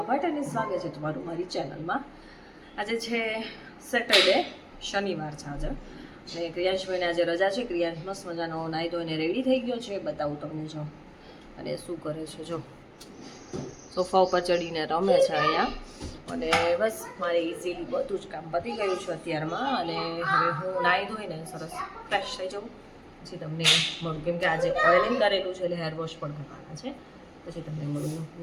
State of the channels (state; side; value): identical; both; correlation 1.00